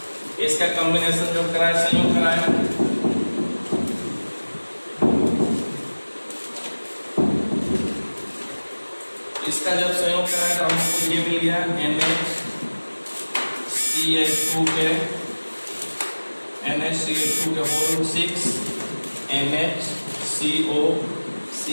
इसका कॉम्बिनेशन जब कराया, संयोग कराया, इसका जब संयोग कराया तो हमको ये मिल गया NHCH2 के होल 6 NHCO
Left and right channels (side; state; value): both; inverted; correlation -1.00